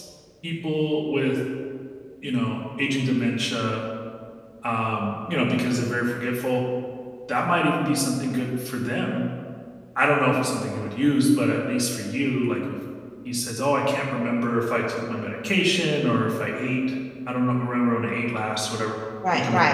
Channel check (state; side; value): identical; both; correlation 1.00